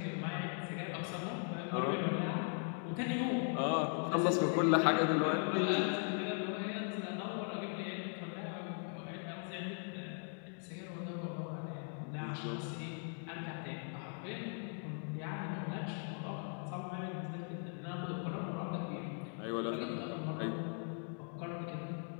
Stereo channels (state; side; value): silent; right; 52 dB below the other